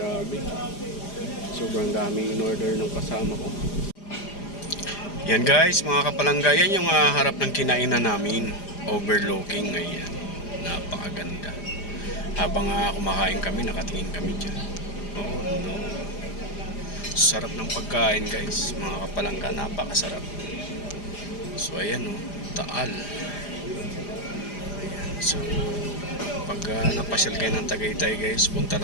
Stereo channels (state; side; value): late; right; 4.9 ms